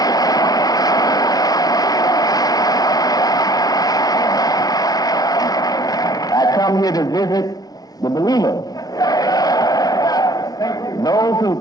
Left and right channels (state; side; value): late; right; 0.18 ms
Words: I come here to visit the believers. Those who